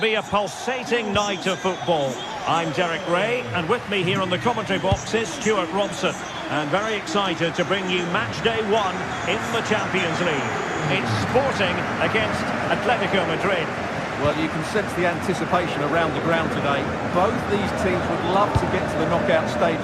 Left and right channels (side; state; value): both; identical; correlation 1.00